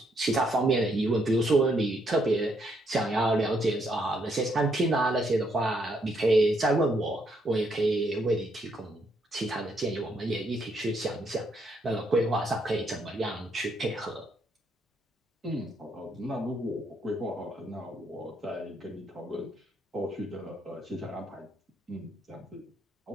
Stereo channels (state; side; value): normal; both; correlation 0.74